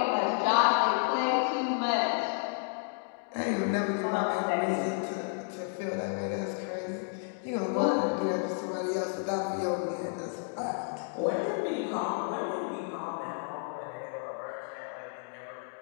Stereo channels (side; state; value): right; silent; 57 dB below the other